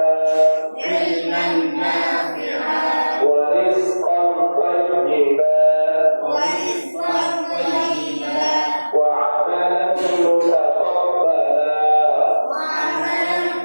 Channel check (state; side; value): inverted; both; correlation -1.00